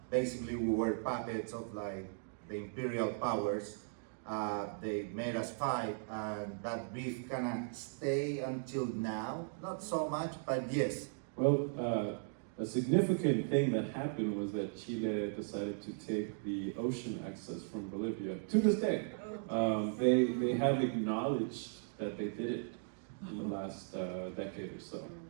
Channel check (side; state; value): left; silent; digital silence